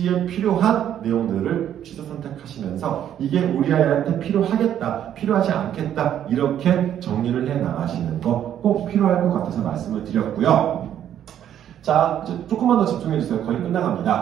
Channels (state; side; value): quieter; left; 10.4 dB